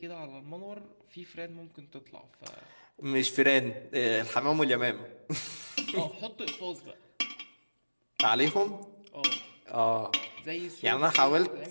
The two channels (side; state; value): both; inverted; correlation -1.00